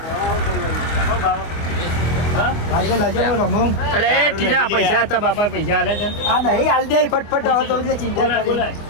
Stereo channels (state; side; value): late; right; 24 ms